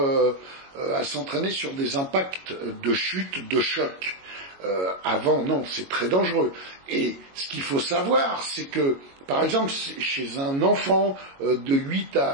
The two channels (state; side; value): late; left; 22 ms